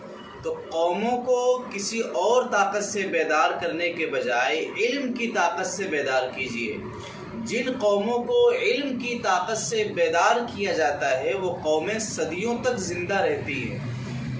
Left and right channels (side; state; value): both; identical; correlation 1.00